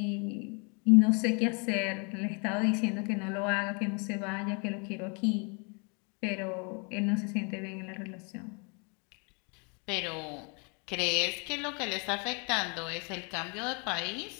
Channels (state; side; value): quieter; right; 34.6 dB